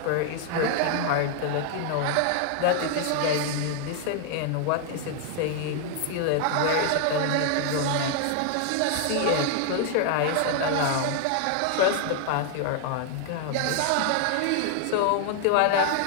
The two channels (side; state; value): both; different; correlation 0.00